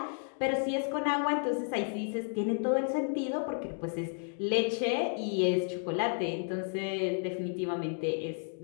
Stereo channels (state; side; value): silent; right; 56 dB below the other